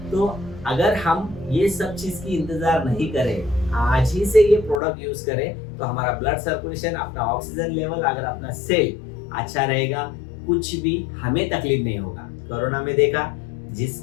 तो अगर हम ये सब चीज की इंतजार नहीं करें, आज ही से ये प्रोडक्ट यूज करें, तो हमारा ब्लड सर्कुलेशन, अपना ऑक्सीजन लेवल, अगर अपना सेल अच्छा रहेगा, कुछ भी हमें तकलीफ नहीं होगा। कोरोना में देखा,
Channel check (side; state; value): right; drops out; at 4.8 s